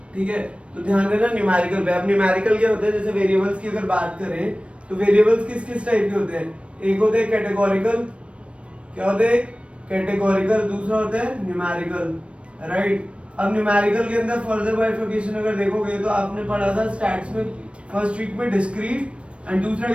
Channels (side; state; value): left; late; 0.060 ms